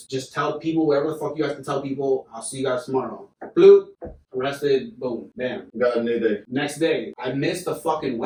tell people, whatever the fuck you have to tell people. I'll see you guys tomorrow. Bloop. Arrested, boom, bam. Got a new day. Next day, I missed the fucking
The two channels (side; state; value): both; identical; correlation 1.00